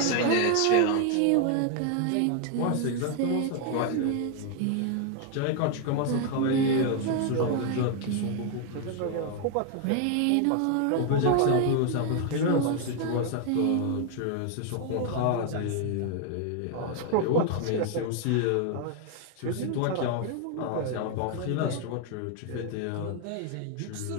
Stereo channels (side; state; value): both; different; correlation 0.00